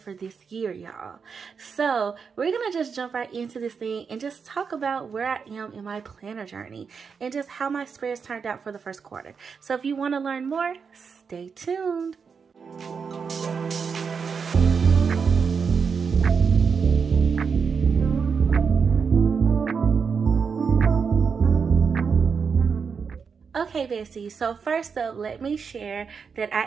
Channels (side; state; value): left; quieter; 5.9 dB